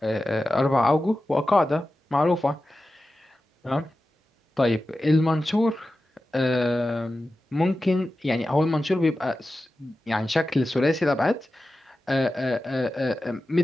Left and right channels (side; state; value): both; normal; correlation 0.93